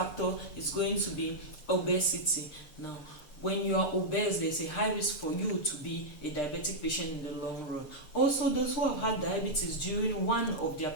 is going to be obesity. Now, when you are obese, there's a high risk for you to be a diabetic patient in the long run. Also, those who have had diabetes during one of their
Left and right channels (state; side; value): late; right; 6.7 ms